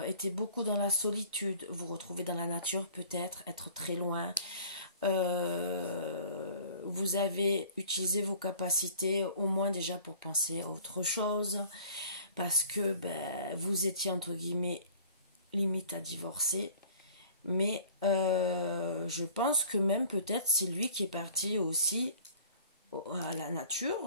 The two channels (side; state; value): both; inverted; correlation -0.48